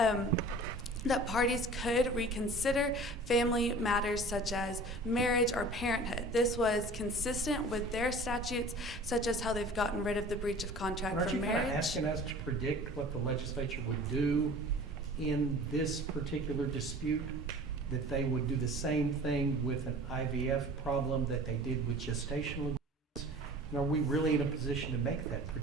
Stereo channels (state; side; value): normal; both; correlation 0.43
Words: that parties could reconsider family matters such as marriage or parenthood. This was consistent with their statutes, such as how they've gotten rid of the breach of contract for marriage. Aren't you kind of asking us to predict what the legislature would do in this particular dispute? That they would do the same thing with an IVF problem that they did with gestational agreements? Are we really in a position to make that